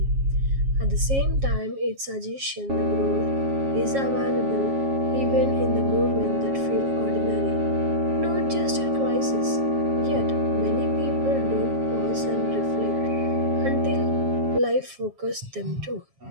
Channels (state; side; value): late; left; 7.3 ms